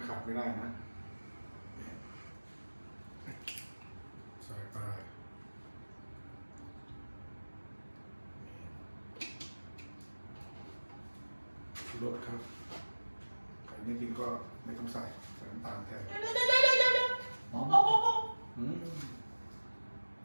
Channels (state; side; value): inverted; both; correlation -1.00